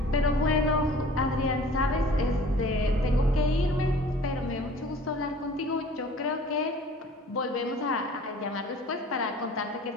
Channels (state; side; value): normal; both; correlation 0.48